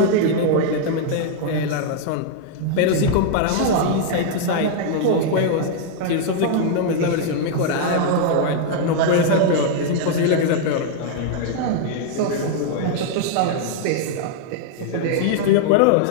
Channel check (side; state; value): both; different; correlation -0.01